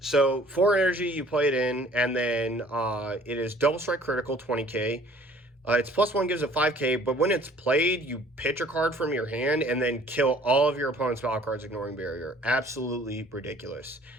4 energy, you play it in, and then it is double strike critical, 20k. It's +1 gives it 5k, but when it's played, you pitch a card from your hand and then kill all of your opponent's battle cards, ignoring barrier. Absolutely ridiculous.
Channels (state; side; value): normal; both; correlation 0.54